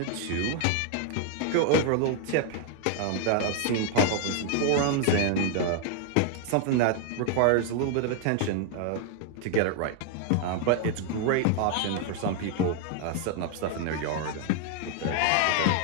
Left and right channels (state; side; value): different; both; correlation 0.00